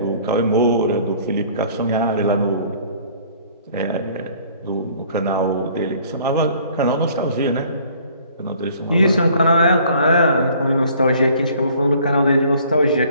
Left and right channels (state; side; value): inverted; both; correlation -0.55